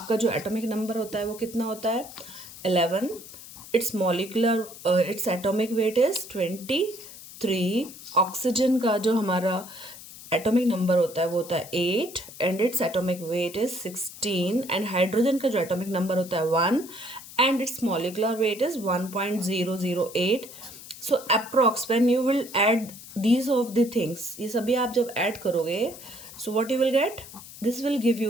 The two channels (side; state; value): left; noise; hiss, 16 dB below the sound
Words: जो एटॉमिक नंबर होता है वो कितना होता है? 11. It's molecular its atomic weight is 23. ऑक्सीजन का जो हमारा एटॉमिक नंबर होता है वो होता है 8 and its atomic weight is 16. And hydrogen का जो एटॉमिक नंबर होता है 1 and it's molecular weight is 1.008. So approx when you will add these of the things, ये सभी आप जब ऐड करोगे, so what you will gate? This will give